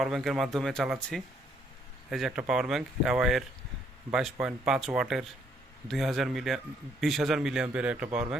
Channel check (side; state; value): both; normal; correlation 0.68